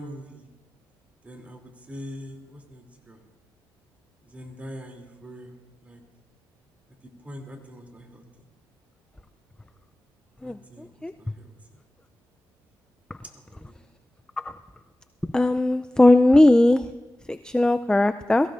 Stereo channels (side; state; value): both; normal; correlation 0.97